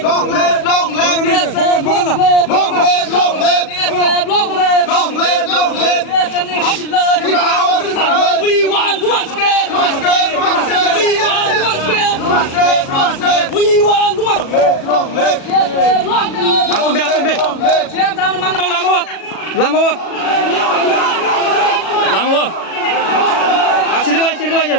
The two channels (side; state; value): right; late; 37 ms